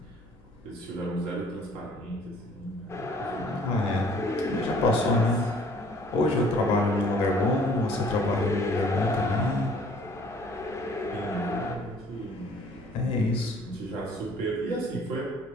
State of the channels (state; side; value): noise; left; hum, 28 dB below the sound